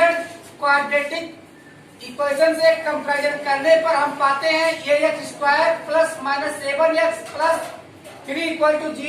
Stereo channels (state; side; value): identical; both; correlation 1.00